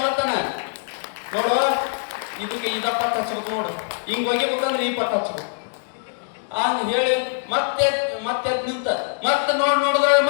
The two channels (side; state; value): right; silent; digital silence